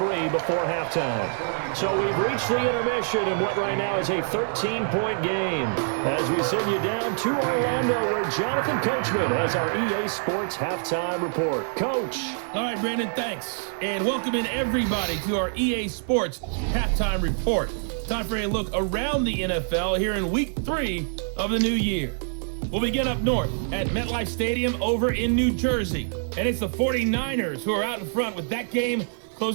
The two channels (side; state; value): left; silent; 61 dB below the other